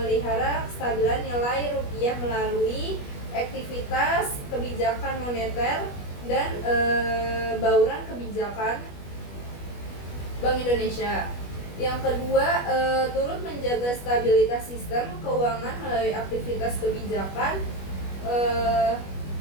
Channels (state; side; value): late; right; 21 ms